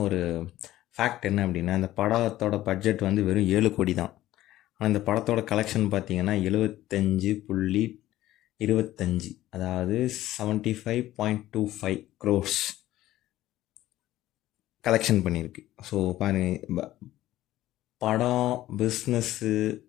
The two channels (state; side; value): quieter; right; 14.8 dB